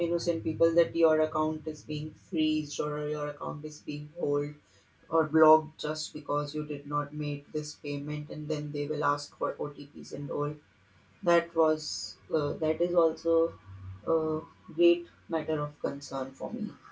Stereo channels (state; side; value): identical; both; correlation 1.00